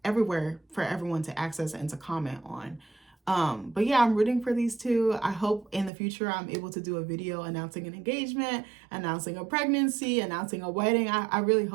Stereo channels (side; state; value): left; drops out; at 5.9 s